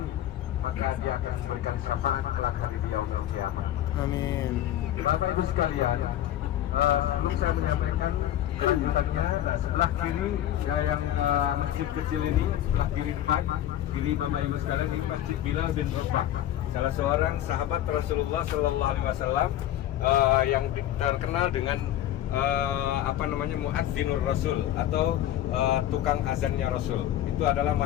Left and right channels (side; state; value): right; quieter; 12.3 dB